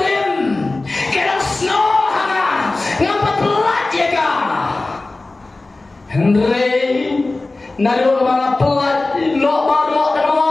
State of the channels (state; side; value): quieter; right; 3.2 dB